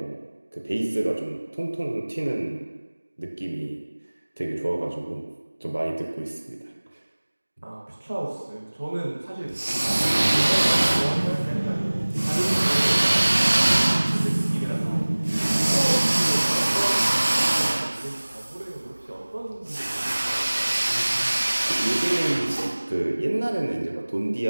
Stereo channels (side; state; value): both; inverted; correlation -1.00